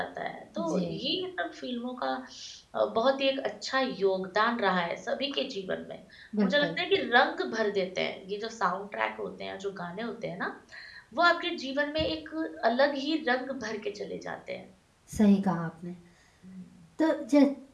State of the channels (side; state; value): both; identical; correlation 1.00